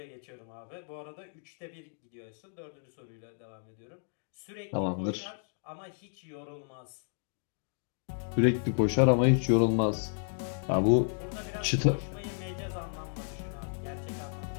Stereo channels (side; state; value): right; silent; digital silence